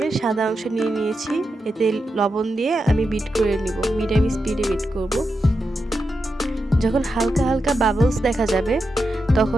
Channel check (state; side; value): normal; both; correlation 0.88